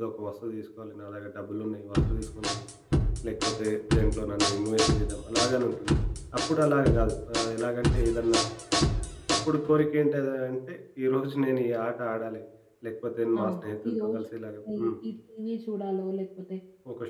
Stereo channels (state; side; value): identical; both; correlation 1.00